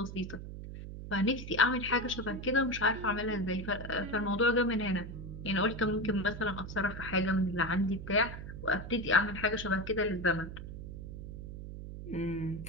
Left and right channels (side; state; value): right; noise; hum, 9 dB below the sound